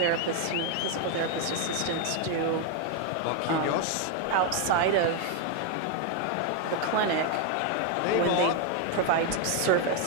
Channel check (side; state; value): both; different; correlation 0.01